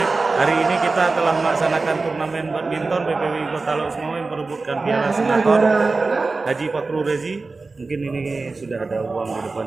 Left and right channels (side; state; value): left; quieter; 3.8 dB